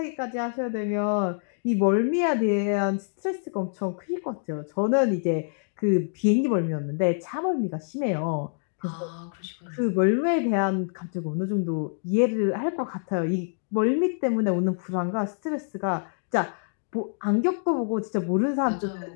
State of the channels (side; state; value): right; silent; digital silence